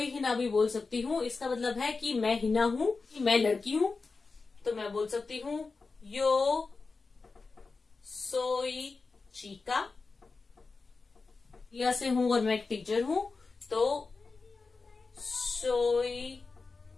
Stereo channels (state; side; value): quieter; right; 4.2 dB